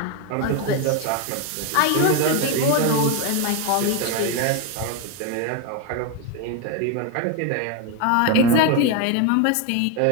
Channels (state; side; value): different; both; correlation 0.02